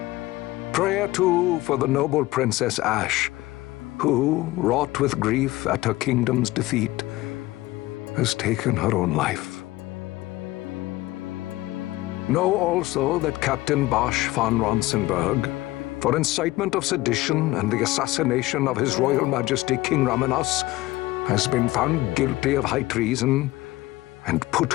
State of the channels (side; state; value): right; quieter; 18.4 dB